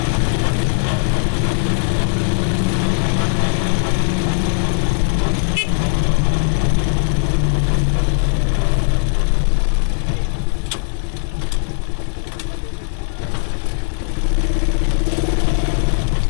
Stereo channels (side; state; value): right; silent; digital silence